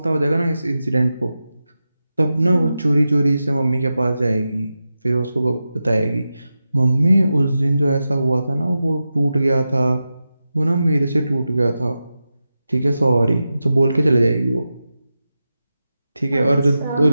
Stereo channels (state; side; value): inverted; both; correlation -0.92